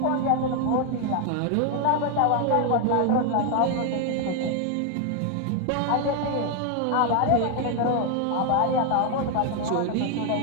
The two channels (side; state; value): both; different; correlation 0.01